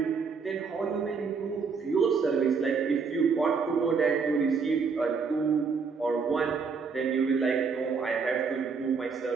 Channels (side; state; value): left; quieter; 5.3 dB